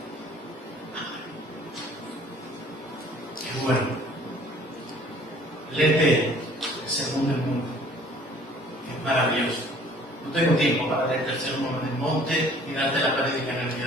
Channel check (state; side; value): normal; both; correlation 0.54